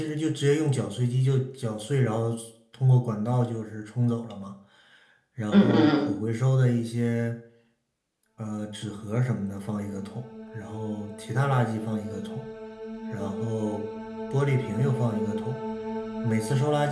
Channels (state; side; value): identical; both; correlation 1.00